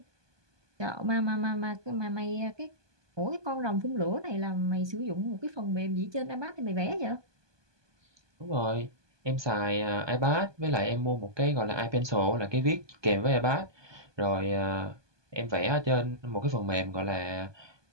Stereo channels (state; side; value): late; left; 1.2 ms